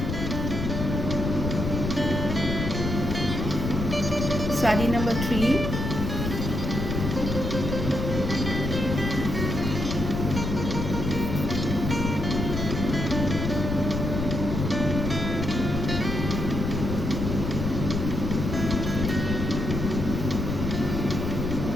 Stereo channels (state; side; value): noise; left; rumble, 3 dB below the sound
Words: শাড়ি নাম্বার 3।